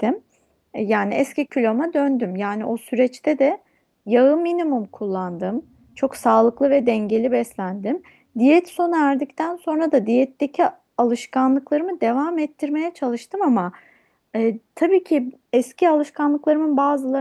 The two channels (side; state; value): both; identical; correlation 1.00